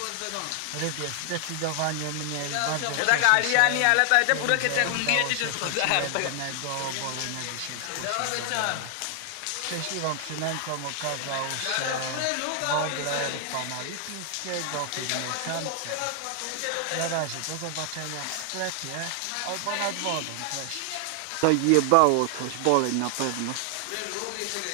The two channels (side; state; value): both; different; correlation 0.00